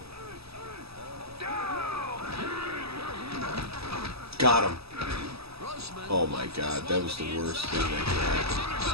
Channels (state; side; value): late; left; 0.78 ms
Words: Got him. Grossman Oh my God, that was the worst thing that could happen.